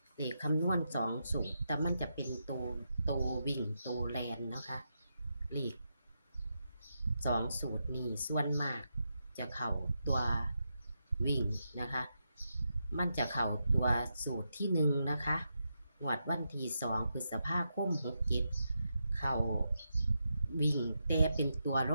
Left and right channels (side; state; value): both; inverted; correlation -0.85